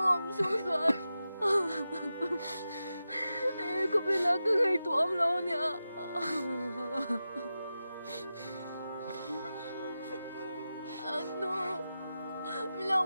xuống rồi. Có biết là cái ngày tụi ông lâu nè. Nó mình lâu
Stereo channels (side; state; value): both; inverted; correlation -0.92